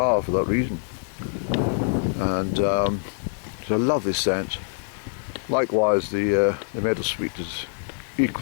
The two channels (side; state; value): right; silent; digital silence